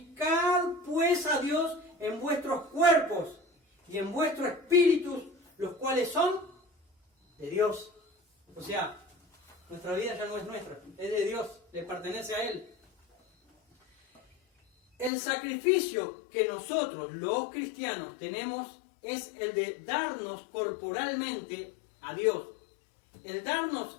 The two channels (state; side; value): drops out; right; at 15.1 s